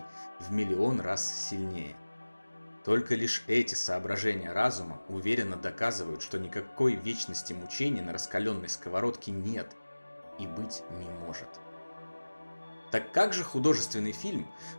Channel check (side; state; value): both; inverted; correlation -1.00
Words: в миллион раз сильнее. Только лишь эти соображения разума уверенно доказывают, что никакой вечности мучений на раскаленной сковородке нет и быть не может. Так как же художественный фильм,